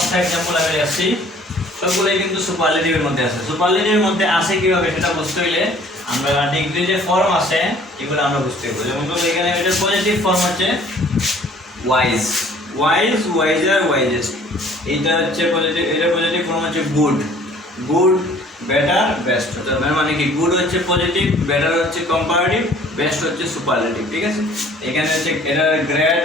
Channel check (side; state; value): both; normal; correlation 0.54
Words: এক্সাম্পল আমি আসছি, সবগুলোই কিন্তু সুপারলেটিভের মধ্যে আছে। সুপারলেটিভের মধ্যে আসে কীভাবে সেটা বুঝতে হইলে আমরা ডিগ্রি যে ফর্ম আছে এগুলো আমরা বুঝতে হবে। যেমন এখানে এটা পজিটিভ ফর্ম হচ্ছে ওয়াইজ, ওয়াইজ, ওয়াইজার, ওয়াইজেস্ট। এইটা হচ্ছে পজিটিভ, এটা পজিটিভ ফর্ম হচ্ছে গুড, গুড, বেটার, বেস্ট। মানে কি গুড হচ্ছে পজিটিভ, বেটার হচ্ছে কম্পারেটিভ, বেস্ট হচ্ছে সুপারলেটিভ, ঠিক আছে। এখানে হচ্ছে এটা